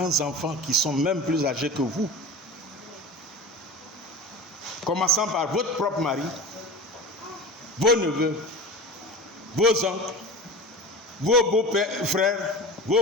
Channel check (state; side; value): normal; both; correlation 0.32